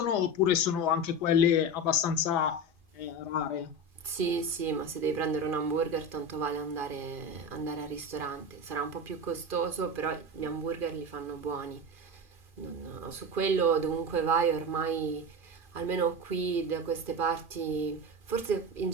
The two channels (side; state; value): left; late; 2.5 ms